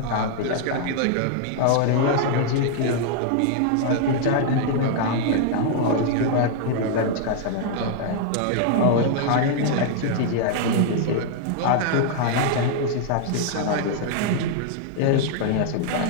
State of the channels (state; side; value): different; both; correlation 0.00